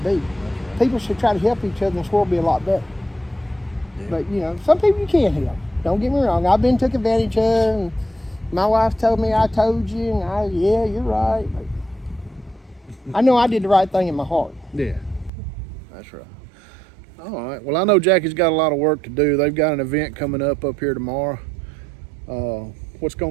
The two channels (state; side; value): drops out; left; at 15.3 s